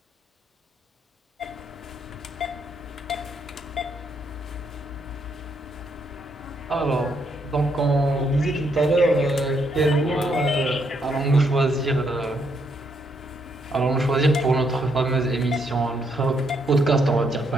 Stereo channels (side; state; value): both; normal; correlation 0.75